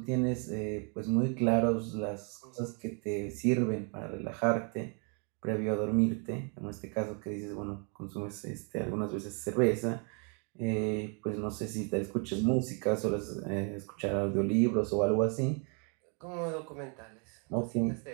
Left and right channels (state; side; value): quieter; left; 37.7 dB